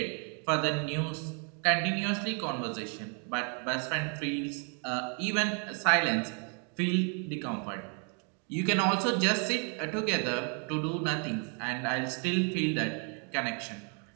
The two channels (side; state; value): left; quieter; 39.1 dB